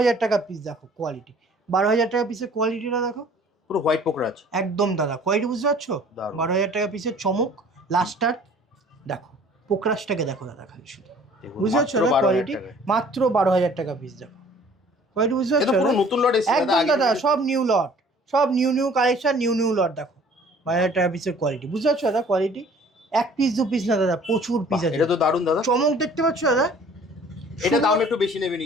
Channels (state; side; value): normal; both; correlation 0.52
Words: টাকা পিস, দেখো কোয়ালিটি 12000 টাকা পিসের কোয়ালিটিটা দেখো, পুরো হোয়াইট পোকরাজ একদম দাদা। কোয়ালিটি বুঝতে পারছো, 12000 টাকা পিসের চমক লাস্টার। দেখো পোকরাজটাকে দেখো দাদা, খালি শুধু বুঝতে পারছো না কোয়ালিটি, মাত্র 12000 টাকা পিস। দেখো কোয়ালিটি বুঝতে পারছো, নতুন লট এসেছে একদম দাদা, সব নিউ লট, সব নিউ কালেকশন, নিউ লট। দেখো 12000 টাকা পিসের কোয়ালিটি বুঝতে পারছো দাদা কোয়ালিটি। এক পিস দু পিস না দাদা, প্রচুর পিস আছে। এটা তো দারুণ দাদা, চমক দেখতে পাচ্ছ দাদা? এটা দাম একটু বেশি নেবে